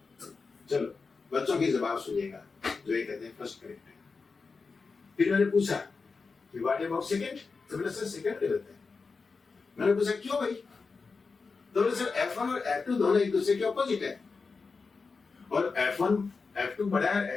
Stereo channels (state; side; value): quieter; right; 4.6 dB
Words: चलो बच्चों की जवाब सुनिएगा जो ये कहते हैं फर्स्ट करेक्ट है। फिर मैंने पूछा कि व्हाट अबाउट सेकंड, तो बोले सर सेकंड गलत है। मैंने पूछा क्यों भाई? तो बोले सर F1 और F2 दोनों एक दूसरे के ऑपोजिट है, और F2 बड़ा